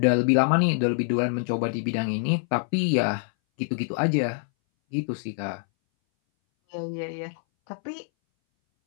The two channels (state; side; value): silent; right; 60 dB below the other